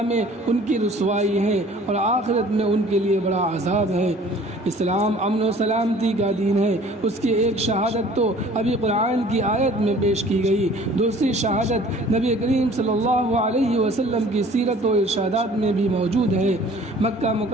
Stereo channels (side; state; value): both; normal; correlation 0.51